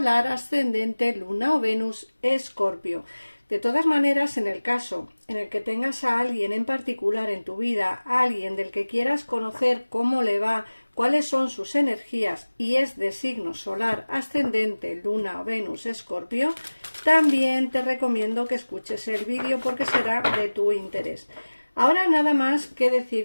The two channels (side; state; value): both; inverted; correlation -1.00